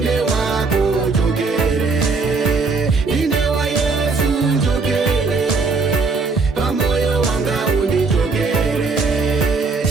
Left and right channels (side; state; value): left; quieter; 4.2 dB